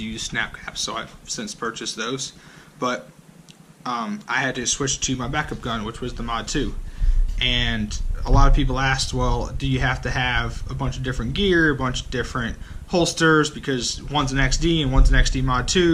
use snap caps, so I've since purchased those. But I had to switch to my backup gun, which was the Mod 2. And a lot of people asked, well, do you have to have a bunch of different gear, a bunch of different holsters, because one's an XD and one's an XD Mod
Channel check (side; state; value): both; identical; correlation 1.00